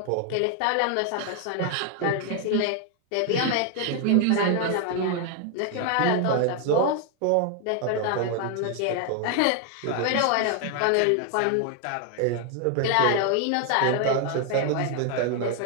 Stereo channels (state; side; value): different; both; correlation 0.01